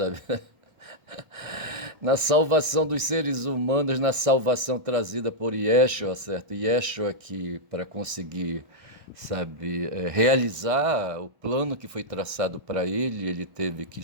na salvação dos seres humanos, na salvação trazida por Yeshua, certo? Yeshua que, para conseguir, sabe, realizar o plano que foi traçado para ele, ele teve que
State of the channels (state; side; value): late; left; 1.6 ms